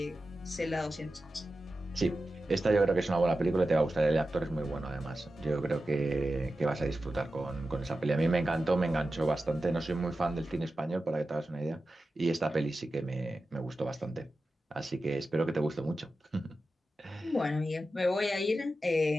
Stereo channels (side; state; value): both; normal; correlation 0.92